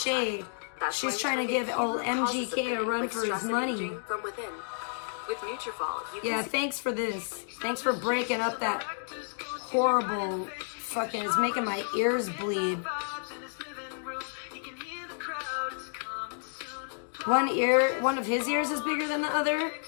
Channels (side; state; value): right; silent; digital silence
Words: She's trying to give old MGK a run for his money. Yeah, thanks for this. Thanks for breaking up that horrible fucking, it's making my ears bleed. One of his ears is bigger than the other?